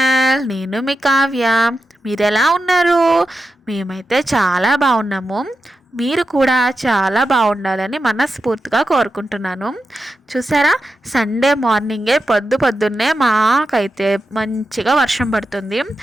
నేను మీ కావ్య. మీరు ఎలా ఉన్నారు? మేమైతే చాలా బాగున్నాము. మీరు కూడా చాలా బాగుండాలని మనస్ఫూర్తిగా కోరుకుంటున్నాను. చూసారా, సండే మార్నింగే పొద్దున్నే మాకైతే మంచిగా వర్షం పడుతుంది.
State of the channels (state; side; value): normal; both; correlation 0.89